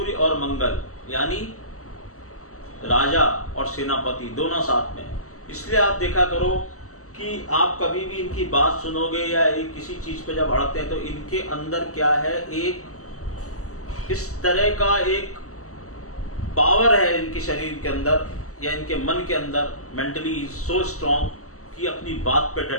और मंगल, यानी राजा और सेनापति दोनों साथ में। इसलिए आप देखा करो कि आप कभी भी इनकी बात सुनोगे या एक किसी चीज पे जब अड़ते हैं तो इनके अंदर क्या है, एक इस तरह का एक पावर है इनके शरीर के अंदर या इनके मन के अंदर, मेंटली सो स्ट्रॉन्ग कि अपनी बात पे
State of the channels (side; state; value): right; late; 0.65 ms